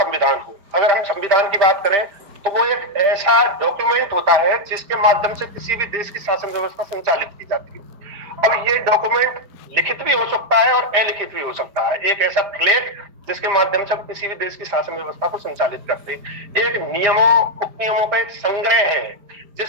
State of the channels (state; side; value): late; left; 5.0 ms